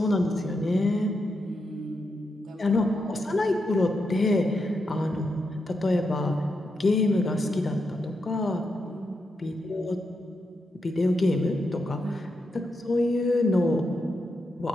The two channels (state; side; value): normal; both; correlation 0.84